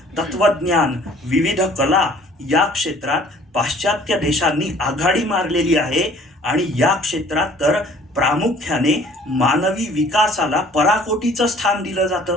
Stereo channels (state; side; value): normal; both; correlation 0.54